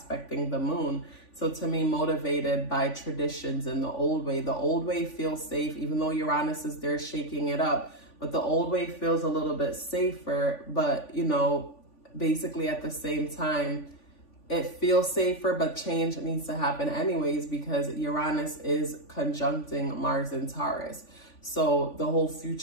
the moon. So to me, motivated by traditions and the old way. The old way feels safe, even though Uranus is there shaking it up. But the old way feels a little bit safer. But, you know, basically at the same time, it feels safer, but change needs to happen anyways because Uranus is conjuncting Mars in Taurus. So the whole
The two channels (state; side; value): late; right; 3.5 ms